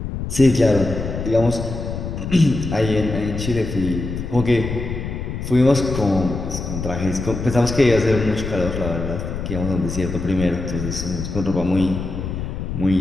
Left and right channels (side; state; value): left; noise; rumble, 5 dB below the sound